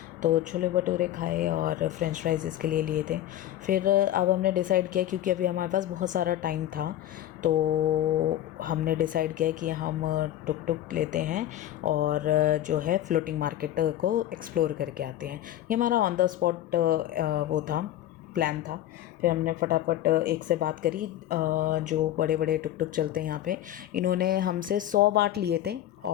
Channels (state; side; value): quieter; right; 12.6 dB